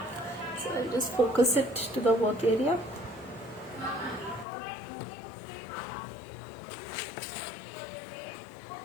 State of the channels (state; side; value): drops out; right; at 4.5 s